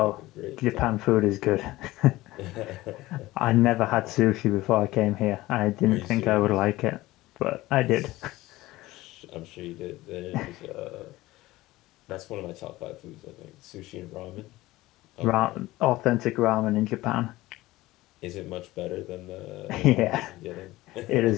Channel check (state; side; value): quieter; right; 18.1 dB